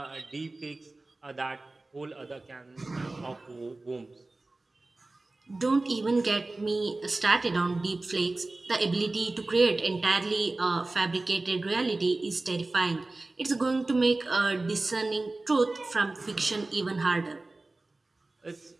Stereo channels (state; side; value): quieter; left; 3.1 dB